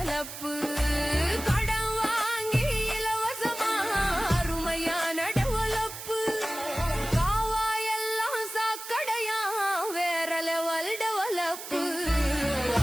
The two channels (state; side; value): noise; right; hiss, 10 dB below the sound